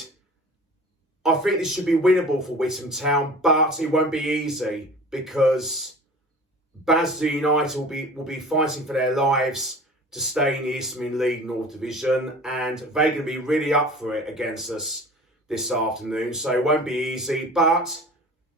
I think this should be winnable for Witham Town, but it won't be easy, because Basildon United will be fighting for their lives to stay in the Isthmian League North Division, and they're going to be really up for it against us this afternoon, so it won't be easy. But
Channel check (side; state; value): both; normal; correlation 0.41